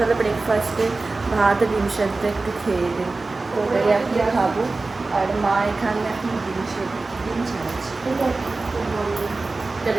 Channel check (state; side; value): quieter; left; 3.5 dB